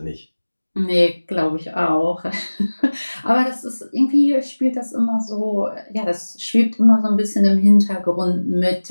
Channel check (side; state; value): both; inverted; correlation -1.00